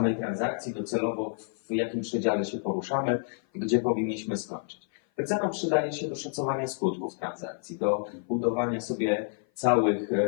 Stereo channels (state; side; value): silent; right; 56 dB below the other